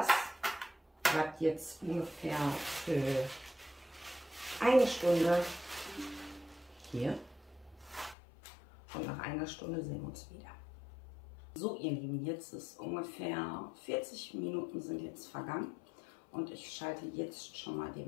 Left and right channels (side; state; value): right; drops out; at 8.2 s